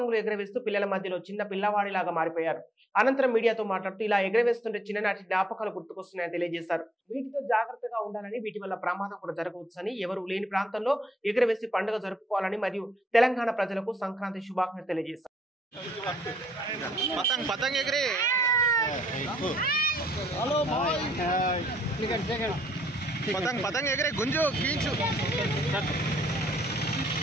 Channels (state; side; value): normal; both; correlation 0.69